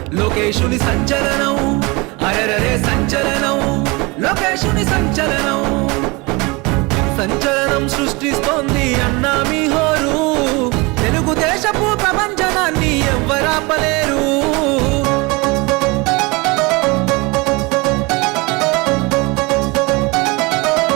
లోకేశుని సంచలనం. అరెరరే సంచలనం లోకేశుని సంచలనం. సంచలనం సృష్టిస్తోంది అన్నా మీ హోరు. తెలుగుదేశపు ప్రపంచనాన్ని ఎవ్వరాపలేరు.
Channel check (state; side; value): quieter; left; 26.0 dB